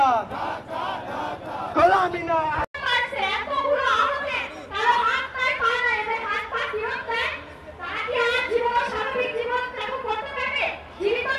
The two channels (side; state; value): both; identical; correlation 1.00